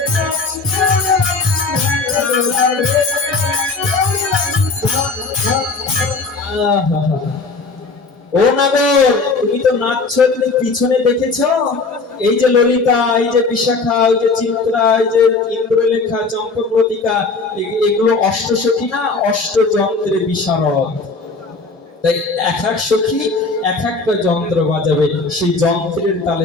ও নাগর তুমি তো নাচছো, তুমি পিছনে দেখেছো? এই যে ললিতা, এই যে বিশাখা, এই যে চিত্রা, এই যে ইন্দ্রলেখা, চম্পকলতিকা, এগুলো অষ্টসখী না, অষ্টযন্ত্রে বিশারদ। তাই এক এক সখী এক একটা যন্ত্র বাজাবে, সেই যন্ত্রের তালে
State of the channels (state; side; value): quieter; right; 4.0 dB